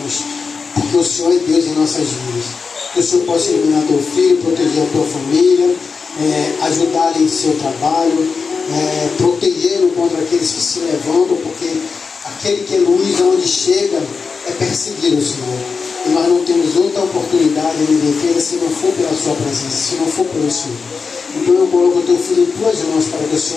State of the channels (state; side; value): quieter; right; 5.0 dB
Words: porque o Senhor é Deus em nossas vidas. Que o Senhor possa iluminar teu filho, proteger a tua família, ajudá-lo em seu trabalho, protegê-lo contra aqueles que se levantam, porque aquele que é luz aonde chega é perseguido, Senhor. E nós não temos outra oportunidade de defesa se não for pela sua presença, se não for pelo Senhor. Então eu coloco o teu filho em tuas mãos para que o